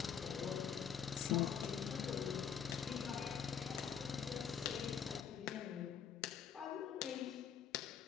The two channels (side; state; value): right; quieter; 7.6 dB